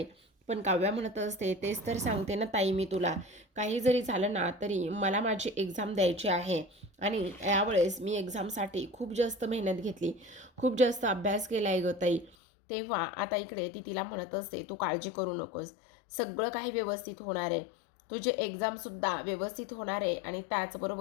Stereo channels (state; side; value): drops out; right; at 12.4 s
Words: पण काव्या म्हणत असते, तेच तर सांगते ना ताई मी तुला, काही जरी झालं ना तरी मला माझी एक्झाम द्यायची आहे, आणि यावेळेस मी एक्झामसाठी खूप जास्त मेहनत घेतली, खूप जास्त अभ्यास केला आहे ग ताई. तेव्हा आता इकडे ती तिला म्हणत असते, तू काळजी करू नकोस, सगळं काही व्यवस्थित होणार आहे. तुझे एक्झामसुद्धा व्यवस्थित होणार आहे, आणि